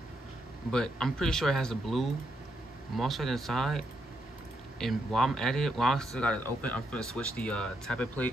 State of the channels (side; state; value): both; normal; correlation 0.79